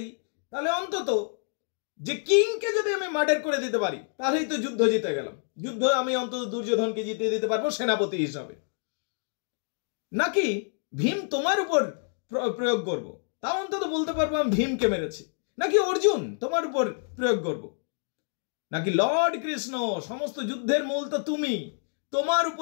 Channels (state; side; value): silent; right; 59 dB below the other